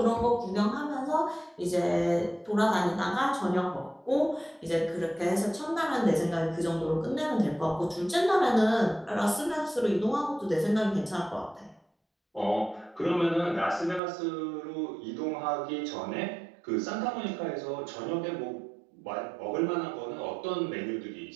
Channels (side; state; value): left; drops out; at 14.0 s